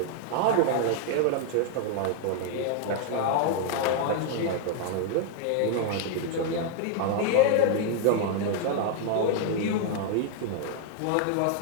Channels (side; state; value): both; different; correlation 0.00